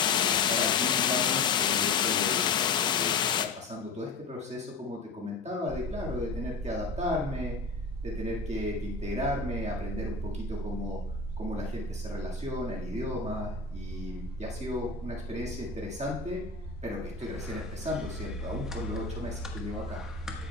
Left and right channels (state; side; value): quieter; right; 4.0 dB